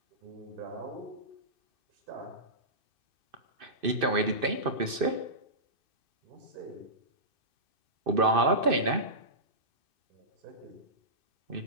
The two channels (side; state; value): left; late; 2.6 ms